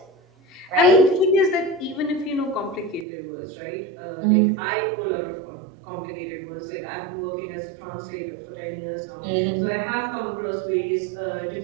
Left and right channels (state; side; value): drops out; left; at 3.1 s